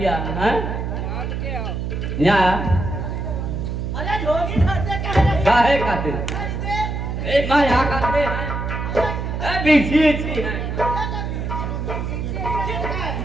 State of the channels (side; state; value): right; noise; hum, 3 dB below the sound